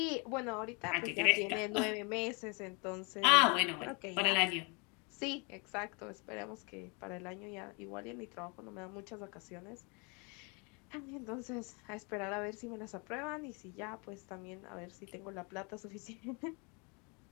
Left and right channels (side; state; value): right; quieter; 31.9 dB